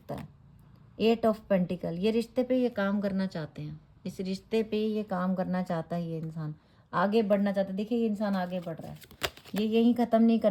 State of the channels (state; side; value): identical; both; correlation 1.00